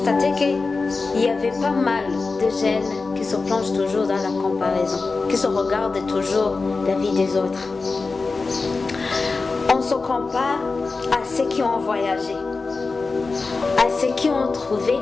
qu'il y avait pas mal de jeunes qui se plongent toujours dans la comparaison, qui se regardent toujours la vie des autres. On se compare à ceux qui ont voyagé, à ceux qui ont trouvé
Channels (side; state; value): right; quieter; 4.0 dB